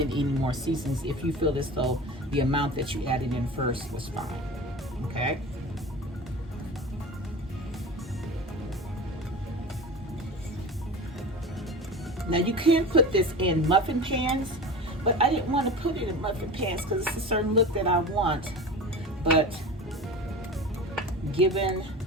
any more seasonings if you feel as though the amount that you added in first was fine, okay? Now you can put this in muffin pans, but I didn't want to put it in muffin pans because it's a certain look that I want. But given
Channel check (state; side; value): normal; both; correlation 0.32